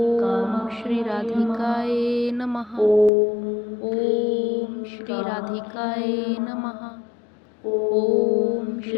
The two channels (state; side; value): drops out; right; at 3.1 s